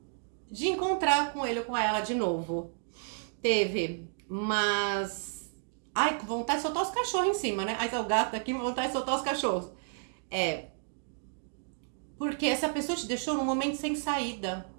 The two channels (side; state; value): left; silent; digital silence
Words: de encontrar com ele ou com ela de novo. Teve, mas... Ai, com vontade de soltar os cachorros em cima, né? Aí tá o gato aqui, com vontade de soltar os cachorros. Porque essa pessoa te deixou num momento sem saída.